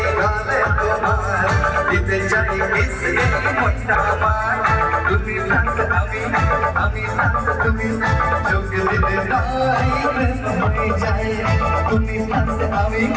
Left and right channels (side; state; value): both; identical; correlation 1.00